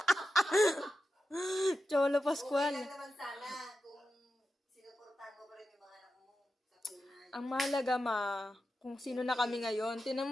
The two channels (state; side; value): normal; both; correlation 0.90